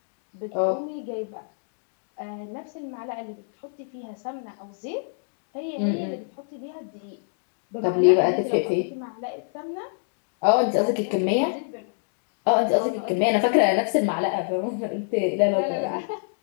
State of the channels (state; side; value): silent; right; digital silence